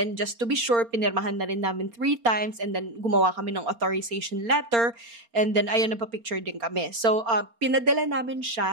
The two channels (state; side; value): late; left; 4.3 ms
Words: just to be sure, pinirmahan na rin namin 3 times, and then gumawa kami ng authorization letter, and then ayun, nagpa-picture din kami. So, pinadala namin